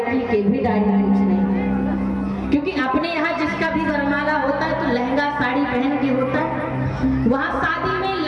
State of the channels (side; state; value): both; identical; correlation 1.00